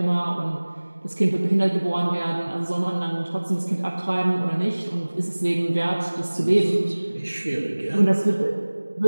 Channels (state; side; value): inverted; both; correlation -1.00